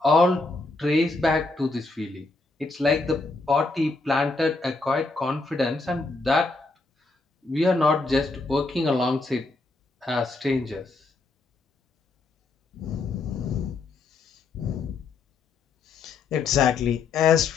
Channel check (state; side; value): quieter; right; 3.6 dB